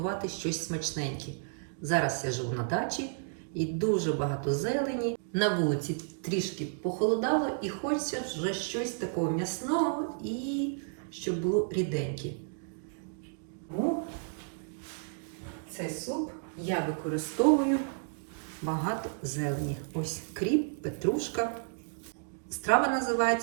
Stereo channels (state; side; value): silent; left; digital silence